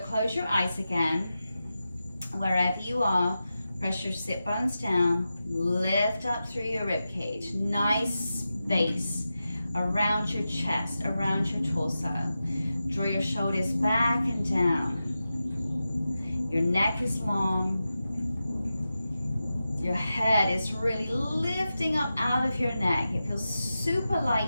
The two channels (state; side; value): inverted; both; correlation -0.92